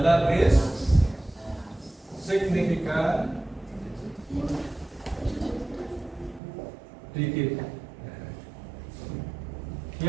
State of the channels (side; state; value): left; drops out; at 6.4 s